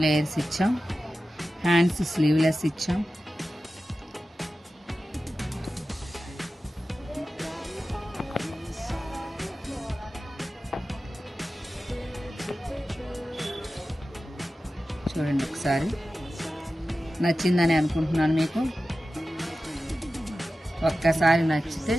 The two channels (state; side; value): normal; both; correlation 0.94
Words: లేయర్స్ ఇచ్చాం. హ్యాండ్స్ స్లీవ్లెస్ ఇచ్చాం. చూడండి ఒకసారి, నచ్చిందని అనుకుంటున్నాను మీకు. ఒక్కసారి నచ్చితే